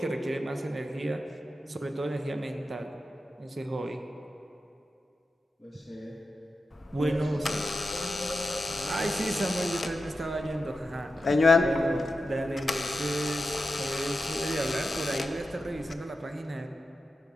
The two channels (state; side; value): normal; both; correlation 0.91